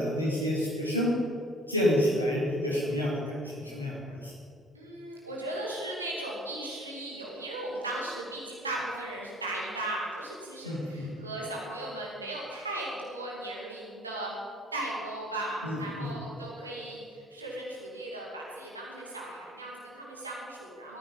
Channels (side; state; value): both; normal; correlation 0.53